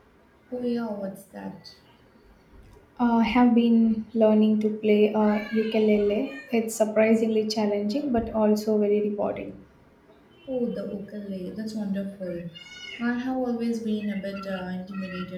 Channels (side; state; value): both; identical; correlation 1.00